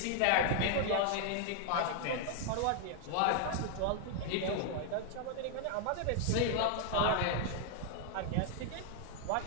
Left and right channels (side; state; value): both; different; correlation 0.00